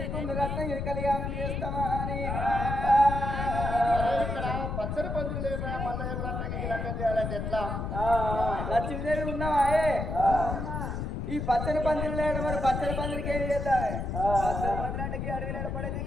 రత్నం ఇది కళ్యాణం చేస్తామా అని ఇక్కడ పచ్చడి పందులు లేక మల్లయ్య రత్నానికి లగ్నం చేయాలంటే ఎట్లా లక్ష్మీదేవి ఉన్నావా ఈ పచ్చని పందిరి లేడు మరి పచ్చని పందిరికి ఏం చేద్దాం అడవిలో పడేది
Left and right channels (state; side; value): noise; left; rumble, 3 dB below the sound